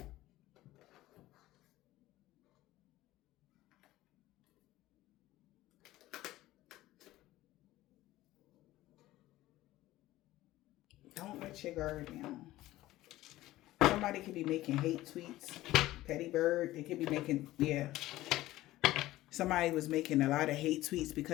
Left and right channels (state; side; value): quieter; right; 16.3 dB